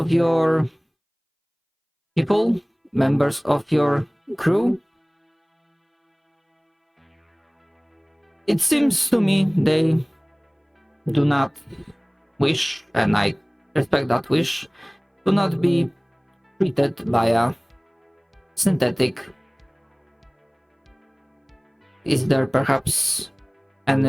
your people, members of your crew, it seems to me they do not wish, and I respect that wish, to not be treated by a synthetic. Is there perhaps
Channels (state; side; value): identical; both; correlation 1.00